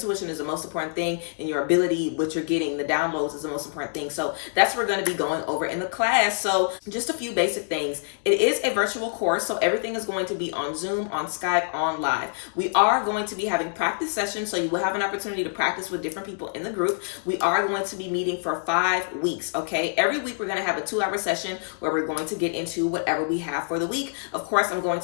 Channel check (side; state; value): right; silent; 61 dB below the other